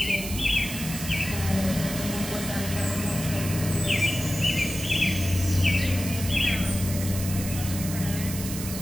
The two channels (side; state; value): right; noise; hiss, 8 dB below the sound